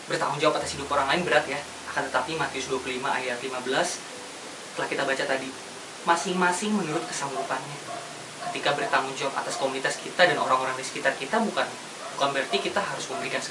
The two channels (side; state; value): both; identical; correlation 1.00